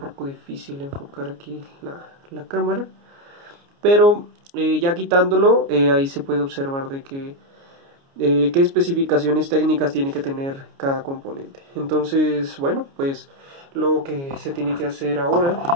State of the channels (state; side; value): late; left; 29 ms